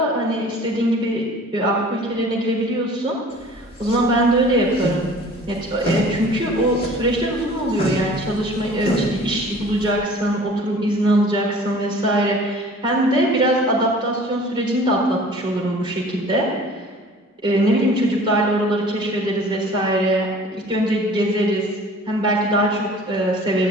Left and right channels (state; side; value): normal; both; correlation 0.47